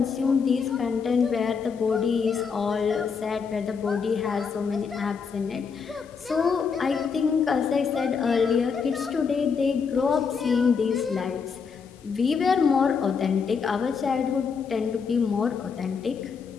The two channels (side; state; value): right; quieter; 5.8 dB